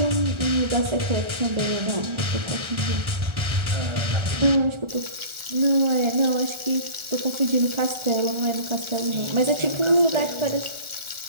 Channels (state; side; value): late; left; 1.4 ms